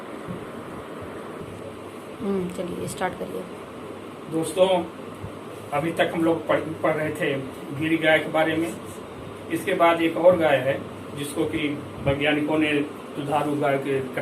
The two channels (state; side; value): identical; both; correlation 1.00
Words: चलिए स्टार्ट करिए। दोस्तों, अभी तक हम लोग पढ़ रहे थे गिरी गाय के बारे में। इसके बाद एक और गाय है जिसको कि वैज्ञानिकों ने दुधारू गाय के